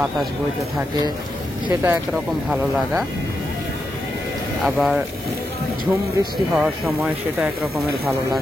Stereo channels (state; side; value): normal; both; correlation 0.85